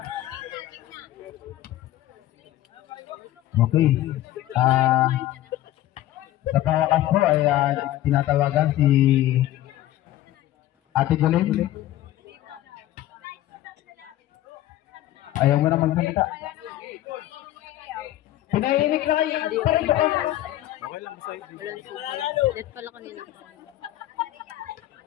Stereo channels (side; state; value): right; quieter; 14.3 dB